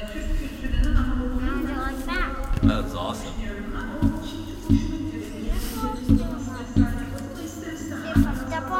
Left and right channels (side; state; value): both; identical; correlation 1.00